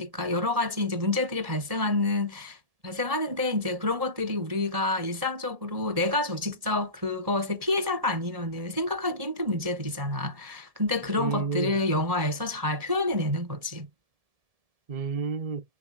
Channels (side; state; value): left; late; 1.7 ms